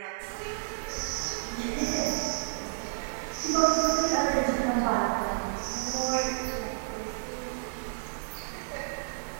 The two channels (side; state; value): left; silent; 57 dB below the other